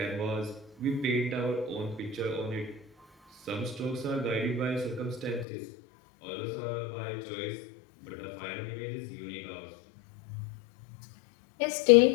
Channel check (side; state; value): right; drops out; at 5.5 s